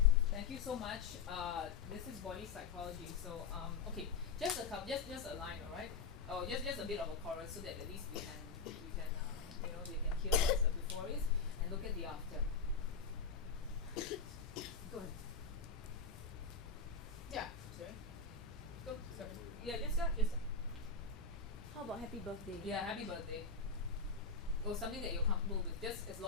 Thank you so much. This is body psychology. So okay, just a couple, just a line, all right? Oh, just a bit of a chorus so that at least we can you know they can hear what the before is and look at the after. Go ahead. Yeah. Sorry. Go. Sorry. Yeah. Just start. Just start. How about happy birthday? Yeah. Happy birthday. Or something that you're comfortable with, just as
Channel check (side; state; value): right; quieter; 5.1 dB